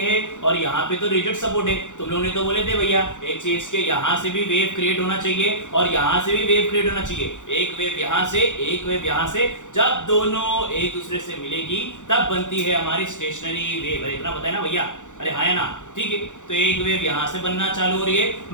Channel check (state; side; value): late; right; 0.86 ms